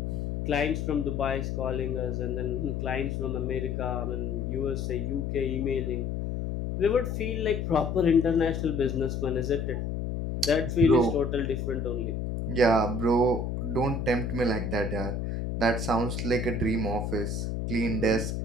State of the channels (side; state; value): left; noise; hum, 2 dB below the sound